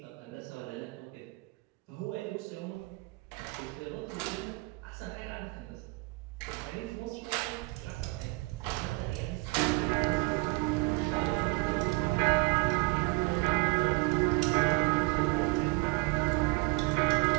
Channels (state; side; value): quieter; left; 24.8 dB